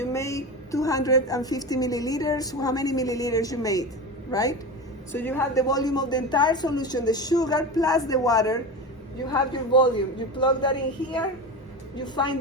make 250 milliliters? How many milliliters you made, right? So you have the volume of the entire solution, the sugar plus the water. You have your volume. You plug that in here, you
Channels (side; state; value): both; normal; correlation 0.24